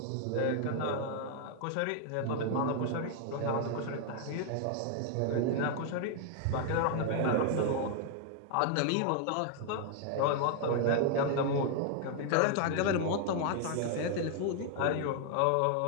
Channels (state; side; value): different; both; correlation 0.00